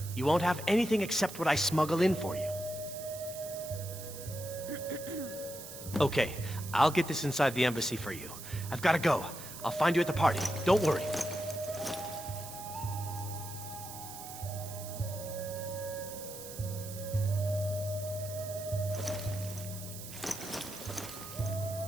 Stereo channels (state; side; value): noise; right; hiss, 12 dB below the sound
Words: you won't have anything except what I smuggle in for you. Okay, I'll get this inside the embassy for you. I've got to go. I'll find you at the party. Don't worry.